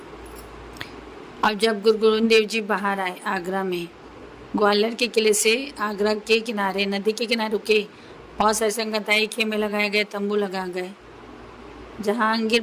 अब जब गुरु गोविंद देव जी बाहर आए आगरा में, ग्वालियर के किले से आगरा के किनारे, नदी के किनारे रुके। बहुत सारे संगताई खेमे लगाए गए, तंबू लगा गए। जहांगीर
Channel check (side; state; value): both; identical; correlation 1.00